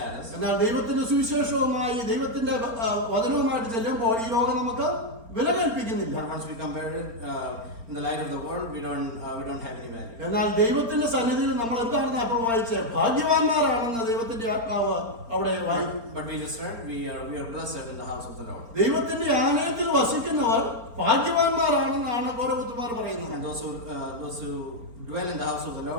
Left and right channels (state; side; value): late; left; 4.3 ms